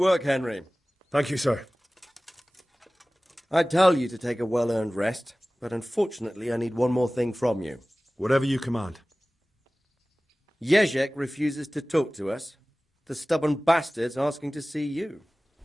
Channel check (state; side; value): normal; both; correlation 0.98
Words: Henry. Thank you, sir. I'd tell you to take a well-earned rest, but unfortunately I need one more thing from you. Whatever you command. Jezek refuses to talk to us. The stubborn bastard's asking to see you.